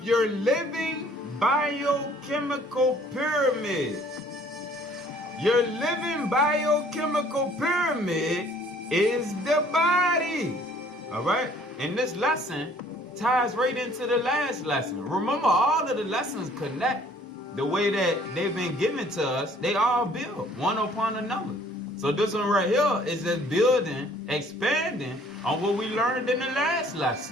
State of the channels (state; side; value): normal; both; correlation 0.57